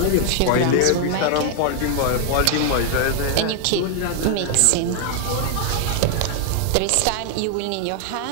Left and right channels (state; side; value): different; both; correlation 0.00